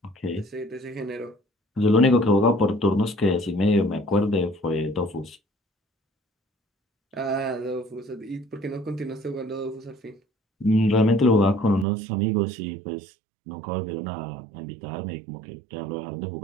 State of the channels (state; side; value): drops out; left; at 11.9 s